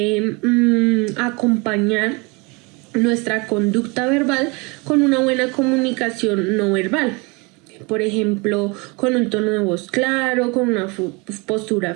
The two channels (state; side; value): quieter; left; 28.2 dB